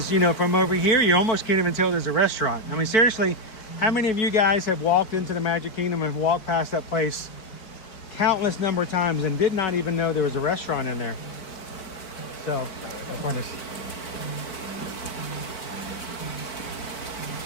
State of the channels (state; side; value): late; right; 4.5 ms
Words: you know, from over here, you almost can't even tell there's a restaurant. I mean, seriously, how many of you guys have walked into the Magic Kingdom and walked past that place countless number of times and did not even know there was a restaurant in there? So, that's fun.